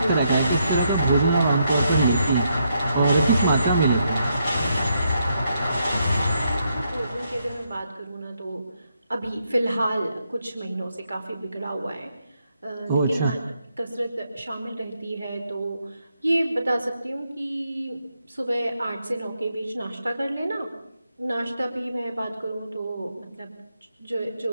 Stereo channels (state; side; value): inverted; both; correlation -0.79